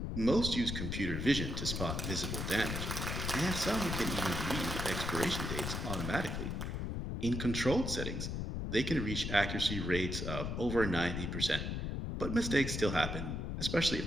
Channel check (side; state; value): left; noise; rumble, 3 dB below the sound